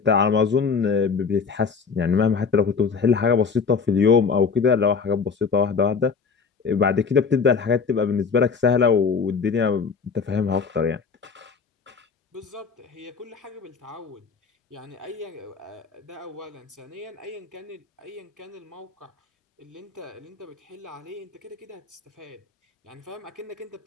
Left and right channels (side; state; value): right; quieter; 5.4 dB